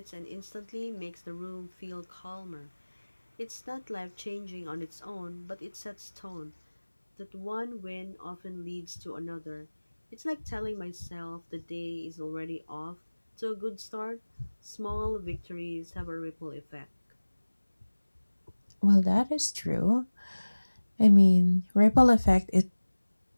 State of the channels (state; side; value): inverted; both; correlation -1.00